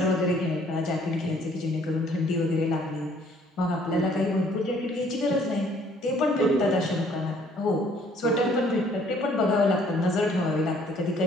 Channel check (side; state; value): both; normal; correlation 0.61